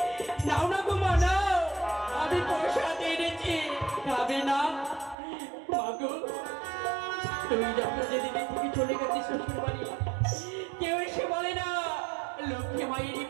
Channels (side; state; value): left; drops out; at 5.2 s